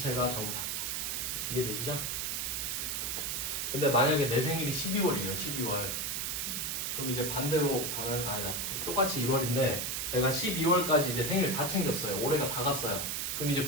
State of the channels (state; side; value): noise; right; hiss, 1 dB below the sound